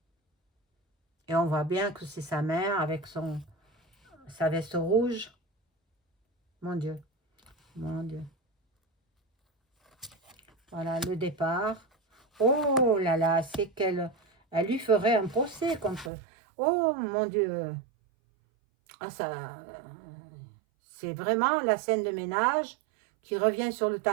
Et on voit bien que c'est sa mère avec sa veste rouge. Mon Dieu, mon Dieu. Voilà, le départ. Oh là là, c'est qu'elle lui ferait un procès contre... Oh mon Dieu. Ah, ça, c'est vraiment la scène de ménage qui revient sur le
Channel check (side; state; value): left; drops out; at 16.1 s